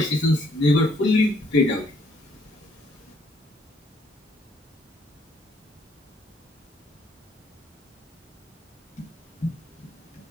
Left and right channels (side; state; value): both; normal; correlation 0.67